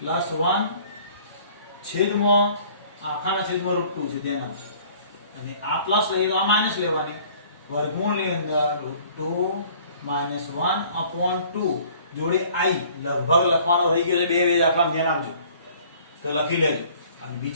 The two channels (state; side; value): inverted; both; correlation -0.54